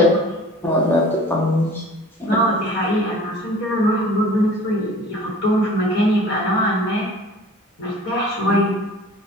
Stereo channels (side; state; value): both; normal; correlation 0.46